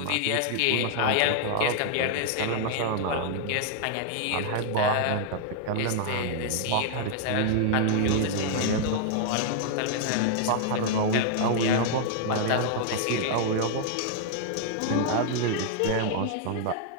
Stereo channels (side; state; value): both; different; correlation -0.01